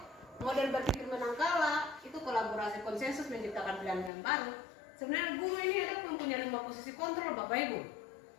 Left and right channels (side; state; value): right; drops out; at 4.1 s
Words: model berpikir menangkala itu kolaborasi konsensus menciptakan pilihan yang baru. Sebenarnya guru ini ada mempunyai 5 posisi kontrol Bapak Ibu.